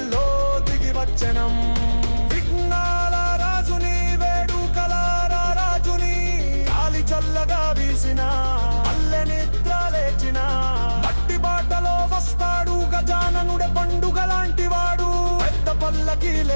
దిగి వచ్చనం. విఘ్నాల రాజుని, వేడుకల రాజుని, గాలి చల్లగా వీసిన అల్లె నిద్ర లేచిన. మట్టి బాటలో వస్తాడు గజాననుడే, పండుగ లాంటి వాడు. పెద్ద పల్లకి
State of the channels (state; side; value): inverted; both; correlation -1.00